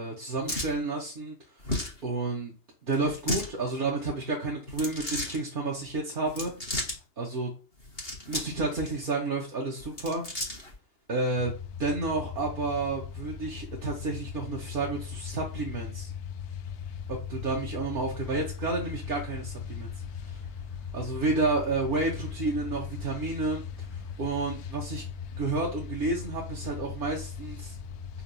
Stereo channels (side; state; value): right; late; 2.8 ms